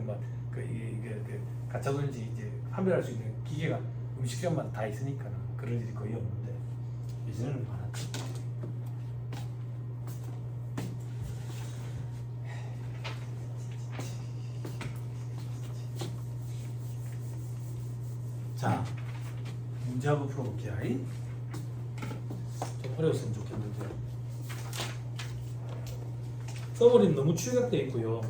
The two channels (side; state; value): both; identical; correlation 1.00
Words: 막 이게 가짜 돈인지 이제 판별할 수 있는 기계가 음식점마다 다 있으니까 그럴 일이 거의 없는데 예전에는 많았지. 자, 문제 한번 풀어볼게요. 좀 어려웠으면 좋겠는데 써버리는 너무 축약되어 있고요.